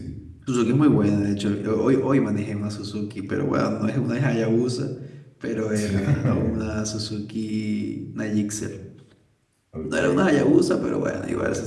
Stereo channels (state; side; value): identical; both; correlation 1.00